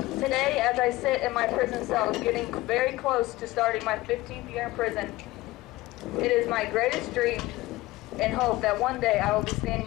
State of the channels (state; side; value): quieter; right; 18.6 dB